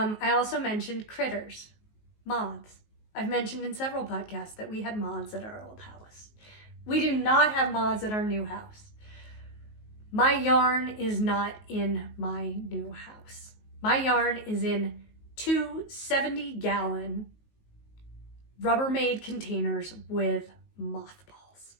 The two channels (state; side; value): late; right; 19 ms